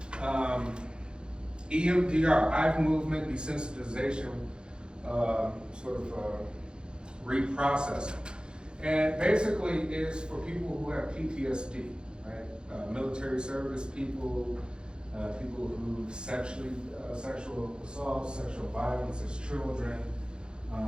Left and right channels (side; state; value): left; late; 0.050 ms